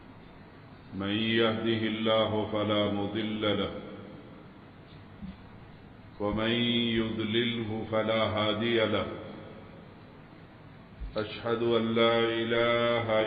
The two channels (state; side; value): identical; both; correlation 1.00